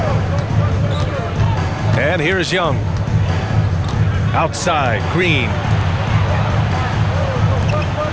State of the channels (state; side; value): identical; both; correlation 1.00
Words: And here's Young. Outside, Green.